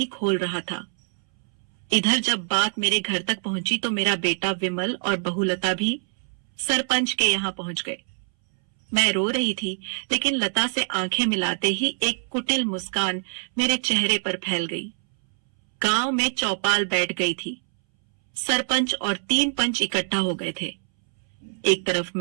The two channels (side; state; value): left; silent; 62 dB below the other